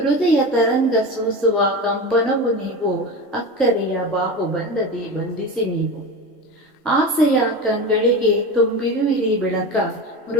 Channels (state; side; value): normal; both; correlation 0.25